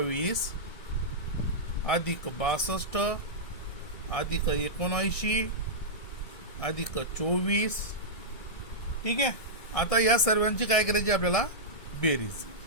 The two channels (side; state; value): right; late; 1.6 ms